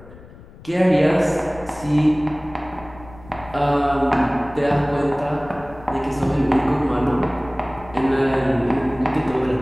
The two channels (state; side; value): noise; left; rumble, 20 dB below the sound